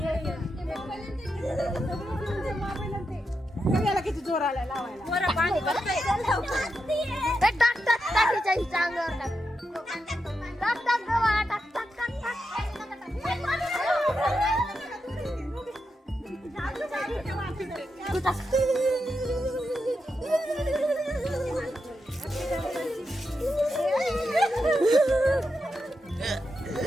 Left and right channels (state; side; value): normal; both; correlation 0.86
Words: किती जोर आला लावायला.